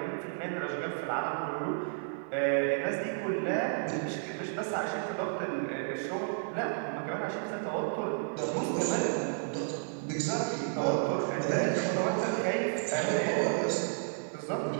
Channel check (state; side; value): silent; left; digital silence